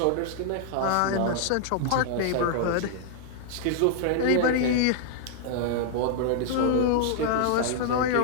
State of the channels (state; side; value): different; both; correlation -0.01